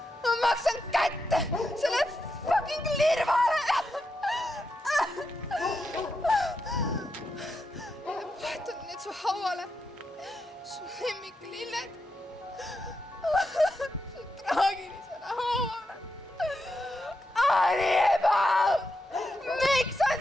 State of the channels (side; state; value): both; normal; correlation 0.85